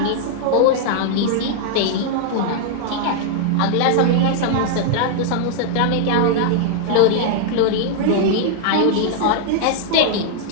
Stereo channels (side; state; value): both; different; correlation -0.01